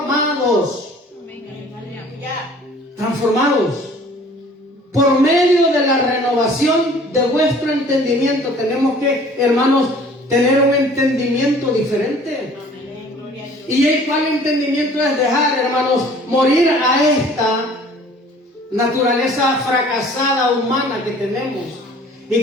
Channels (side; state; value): both; normal; correlation 0.51